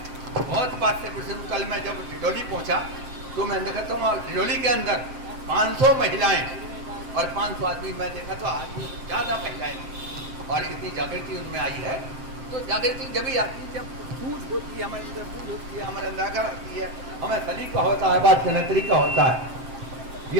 बहुत बात से कुछ दिन कल मैं जब डिडोली पहुँचा तो मैं देखता हूँ डिडोली के अंदर 500 महिलाएं और 500 आदमी। मैं देखा तो आदमी ज़्यादा महिलाएं और इतनी जागृति उनमें आई है। तो जागृति जब भी आती है, जब सूझ होती है, हमारे अंदर बूझ होती है, हमारे अंदर आकर आती है, हमें सलीका होता है, बात करने तरीका होता है,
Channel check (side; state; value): left; late; 7.6 ms